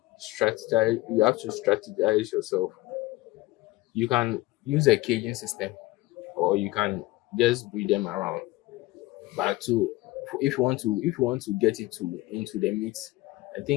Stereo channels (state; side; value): quieter; right; 19.1 dB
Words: strategize. You have to strategize yourself. You can use a caging system, or you can just breed them around. But to if you want to get it to into the meat, I